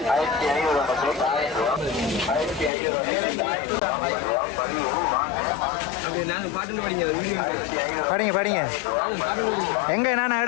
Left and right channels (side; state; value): right; drops out; at 2.7 s